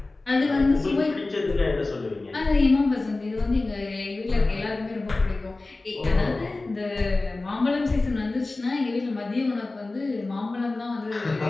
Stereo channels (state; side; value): quieter; right; 3.2 dB